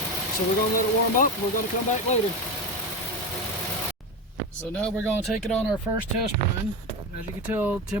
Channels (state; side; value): normal; both; correlation 0.20